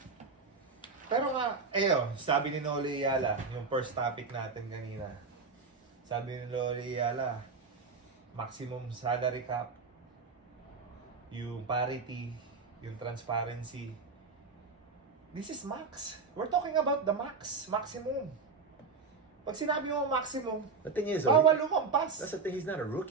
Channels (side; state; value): left; quieter; 4.7 dB